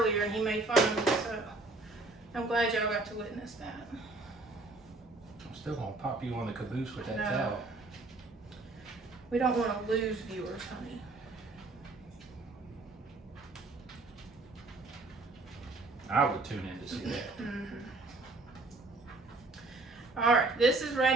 and he made fun of me, so I'm glad y'all got to witness that. Still gonna pop you on the caboose with that No. towel. We don't want to lose viewers, honey. I would tune in to see that. All right, this is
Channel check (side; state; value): left; quieter; 3.3 dB